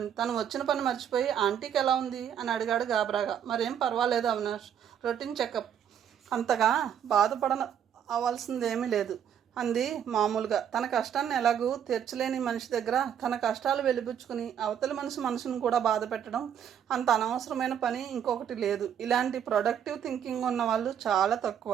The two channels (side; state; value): left; quieter; 8.9 dB